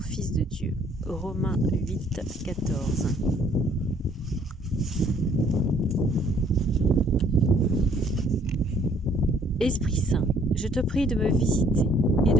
de Dieu. Romains 8, 14. Esprit Saint, je te prie de me visiter et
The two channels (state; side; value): normal; both; correlation 0.62